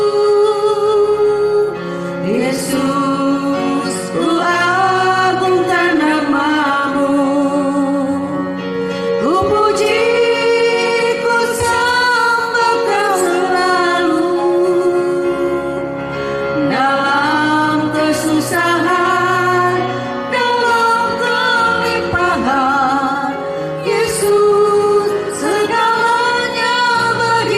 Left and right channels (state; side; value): identical; both; correlation 1.00